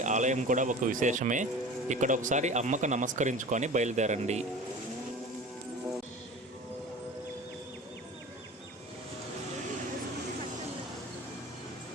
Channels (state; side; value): normal; both; correlation 0.37